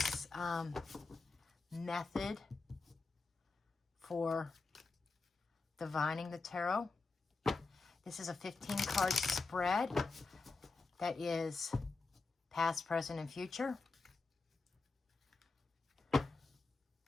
method for divining the tarot. This is a 15-card spread that is past, present, and future. And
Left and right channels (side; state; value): right; quieter; 3.9 dB